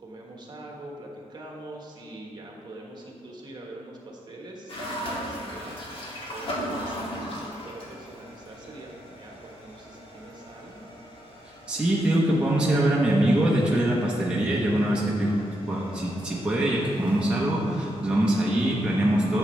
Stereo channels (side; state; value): both; normal; correlation 0.82